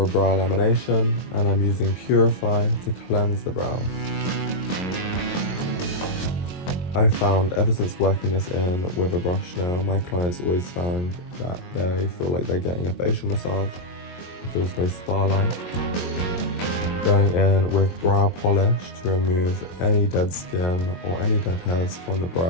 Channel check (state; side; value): late; right; 22 ms